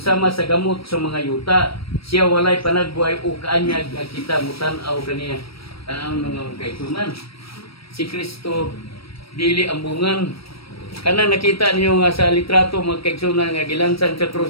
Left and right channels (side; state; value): right; late; 0.75 ms